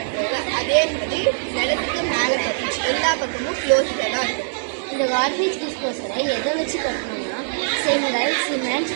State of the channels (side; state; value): left; silent; digital silence